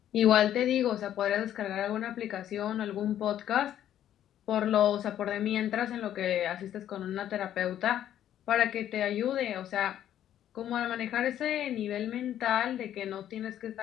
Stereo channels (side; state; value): right; quieter; 11.2 dB